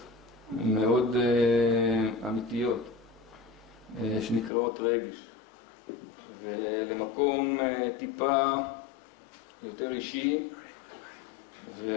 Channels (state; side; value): drops out; right; at 4.5 s